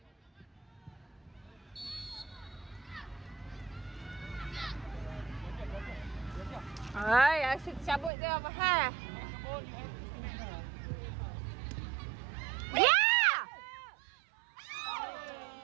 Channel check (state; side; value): drops out; left; at 8.1 s